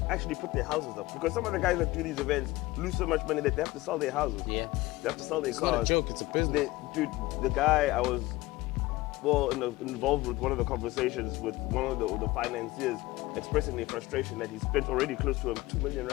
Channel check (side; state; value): right; quieter; 19.4 dB